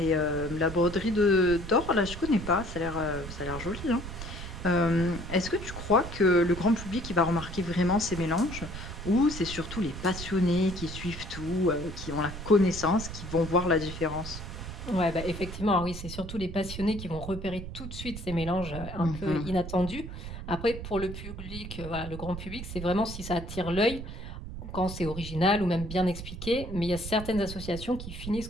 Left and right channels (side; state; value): right; noise; rumble, 9 dB below the sound